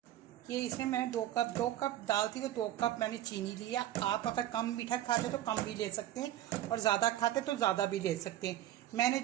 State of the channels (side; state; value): left; quieter; 13.1 dB